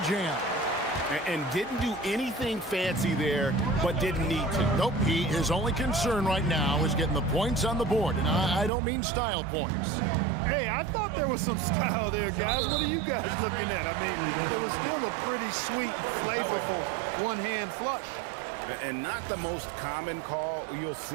jam. And didn't do anything fancy there, but didn't need to. Nope, his only concern right now is getting the points on the board, and I don't mean style points. Hey, I thought there was some style there, guys. What are you guys looking at? I mean, it was still a pretty sweet, flavorful one-hand flush. And not the most common call you'll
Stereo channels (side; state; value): left; drops out; at 8.7 s